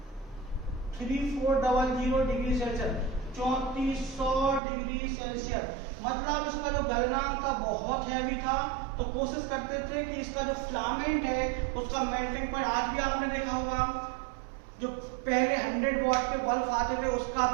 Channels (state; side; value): drops out; left; at 4.6 s